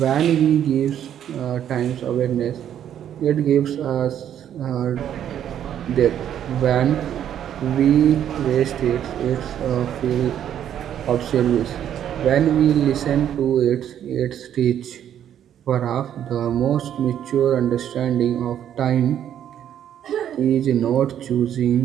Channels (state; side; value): quieter; left; 10.1 dB